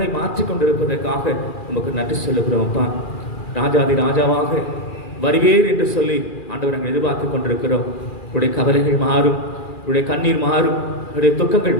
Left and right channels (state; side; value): late; right; 2.4 ms